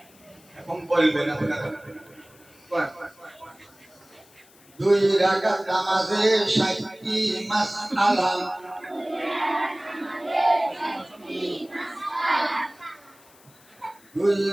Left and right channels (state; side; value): noise; left; hiss, 27 dB below the sound